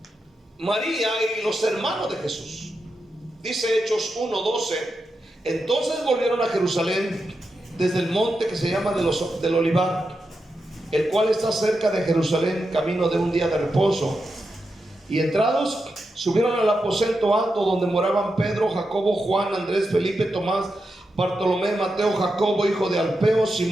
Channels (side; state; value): both; normal; correlation 0.88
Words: María y los hermanos de Jesús. Dice Hechos 1:12, entonces volvieron a Jerusalén desde el monte que se llama del Olivar, el cual está cerca de Jerusalén, camino de un día de reposo. Y entrados, subieron al aposento alto donde moraban Pedro, Jacobo, Juan, Andrés, Felipe, Tomás, Bartolomé, Mateo, Jacobo, hijo de Alfeo,